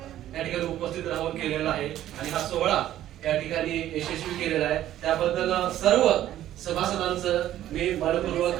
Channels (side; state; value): left; quieter; 12.7 dB